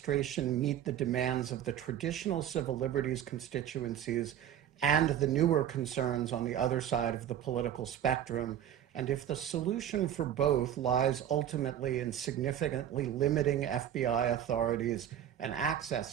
meet the demands of the traditional civil liberties constituencies and the newer concerns on the other side of the political spectrum? And if the solution for both lies ultimately in significantly limiting FBI authorities and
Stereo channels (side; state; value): left; quieter; 10.3 dB